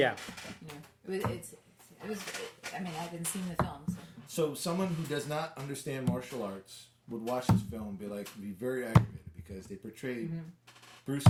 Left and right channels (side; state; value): both; identical; correlation 1.00